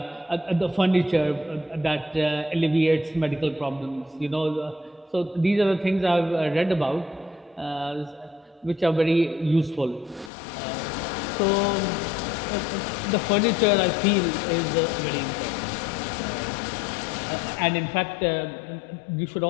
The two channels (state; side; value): drops out; right; at 10.3 s